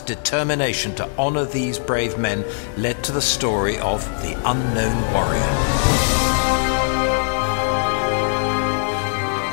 determination to honor these brave men led to the story of the Unknown Warrior.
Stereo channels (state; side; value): silent; right; digital silence